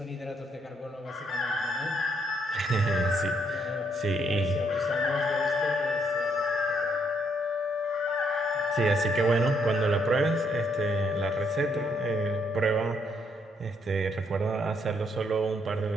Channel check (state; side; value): normal; both; correlation 0.73